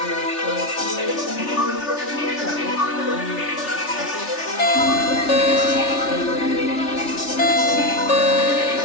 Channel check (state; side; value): late; right; 3.3 ms